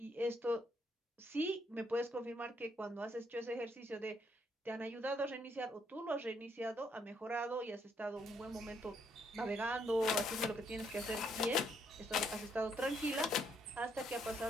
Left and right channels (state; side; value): normal; both; correlation 0.72